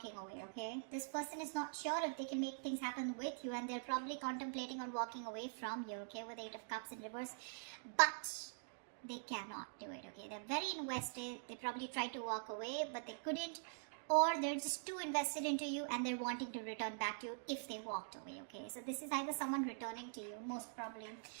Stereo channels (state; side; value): silent; left; digital silence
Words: away, okay? This person is not sure if they can make things happen with you, and they're probably contemplating on walking away from you, okay, with Eight of Cups in reverse. But they cannot do it, okay? They're very invested. They probably tried to walk away, but they couldn't. Or they're just too invested into you and they're wanting to return back to you if they walked away, okay? So this is either someone returning to you, most probably.